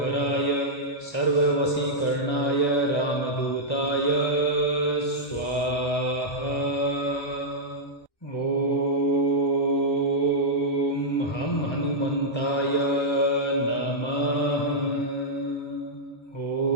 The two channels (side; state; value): right; late; 1.6 ms